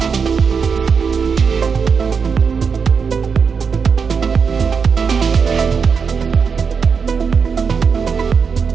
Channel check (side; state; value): left; quieter; 5.9 dB